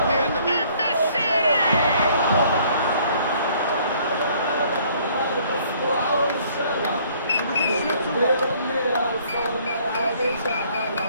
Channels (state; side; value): inverted; both; correlation -0.60